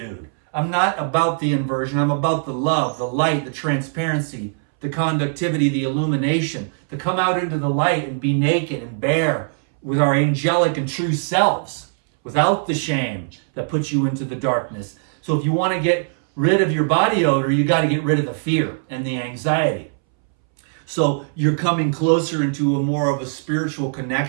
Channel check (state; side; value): silent; left; 64 dB below the other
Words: I'm not about the inversion. I'm about the love, the light, the transparency, the conductivity, the illumination, to come out into the light and be naked and bare with our angelic and true selves, without the shame that puts you into the darkness. So if you want to get rid of your body odor, you got to get rid of the fear and the anxiety. So you're coming closer into a more of a spiritual